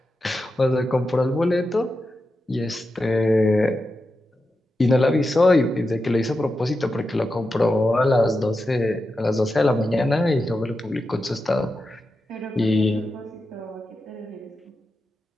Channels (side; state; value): both; normal; correlation 0.90